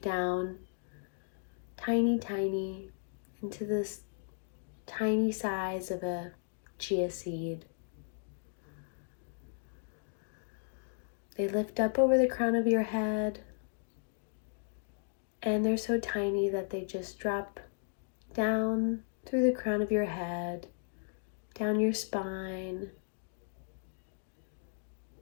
down tiny into this tiny size of a chia seed. They lift up over the crown of your head, and they're so tiny that they just drop down through the crown of your head, down your spine,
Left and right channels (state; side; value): silent; right; digital silence